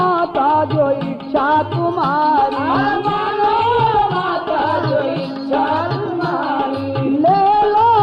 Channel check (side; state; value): both; identical; correlation 1.00